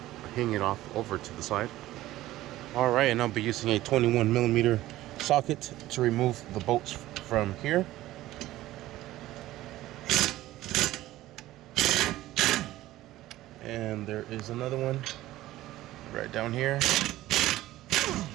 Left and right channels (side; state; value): left; quieter; 15.8 dB